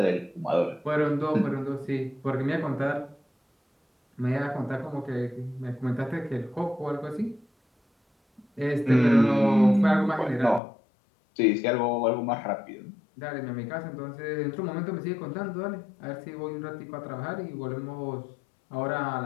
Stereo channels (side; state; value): right; drops out; at 10.6 s